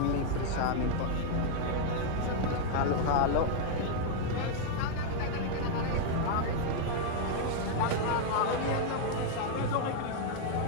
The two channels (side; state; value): both; different; correlation 0.00